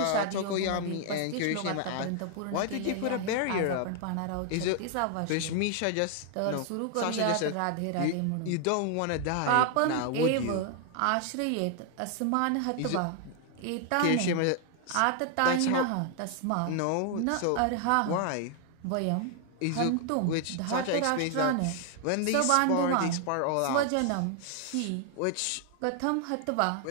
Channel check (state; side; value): different; both; correlation 0.00